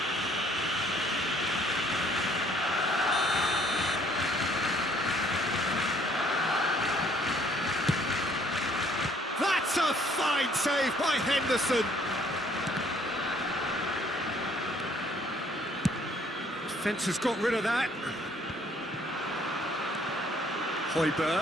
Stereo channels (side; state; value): both; normal; correlation 0.62